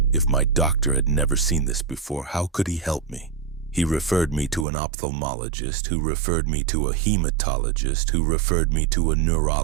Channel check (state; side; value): drops out; left; at 4.7 s